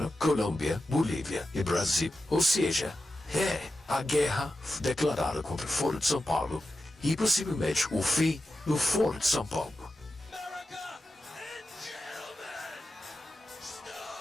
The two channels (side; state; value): both; normal; correlation 0.91